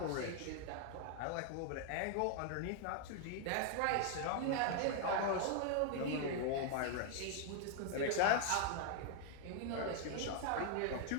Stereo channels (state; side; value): different; both; correlation 0.00